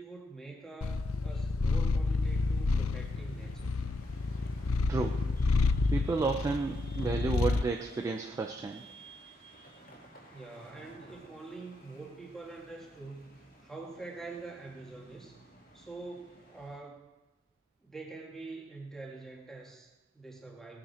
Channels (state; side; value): normal; both; correlation 0.82